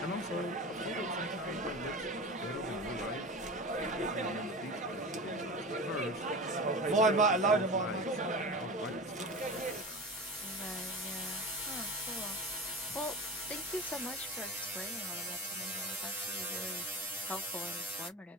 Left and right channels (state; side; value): normal; both; correlation 0.31